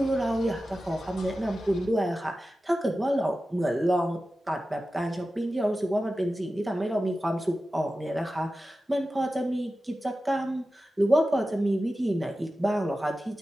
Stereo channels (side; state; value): both; normal; correlation 0.94